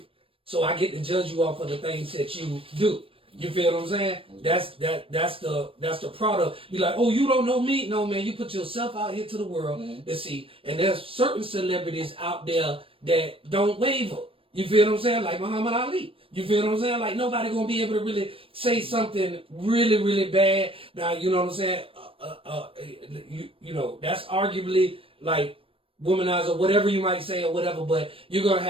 so I get to judge you off of the things that you do. You feel what I'm saying? That's the product. Be like, oh, you don't know me? No, man. You put yourself out here to the world to see. And there's certain celebrities out there that don't waver. You feel what I'm saying? Like Muhammad Ali. You feel what I'm saying? Like nobody gonna be able to really say something really, really bad. Now, you know what I'm saying? You know, that's arguably like womanizer, whatever you might say or whatever, but you're gonna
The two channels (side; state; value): left; late; 0.26 ms